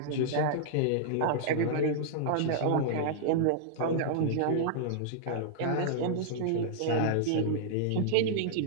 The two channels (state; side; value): different; both; correlation -0.02